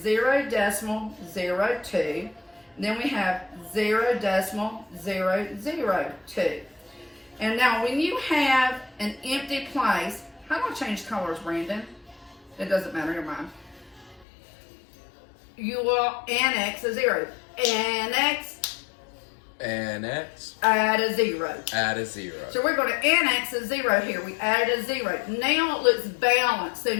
decimal 02. And then we have 0 decimal 002. And now when you have an empty place, how do I change colors, Brandon? It doesn't matter, your mind. You will annex a 0. Annex. Add a 0. Add a 0. So we're going to annex a 0 here. We added a 0. Now it looks balanced. So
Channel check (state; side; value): drops out; right; at 14.2 s